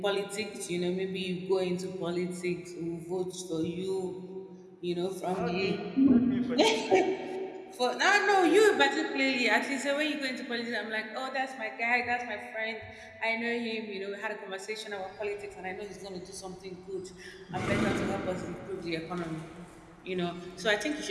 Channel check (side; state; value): both; identical; correlation 1.00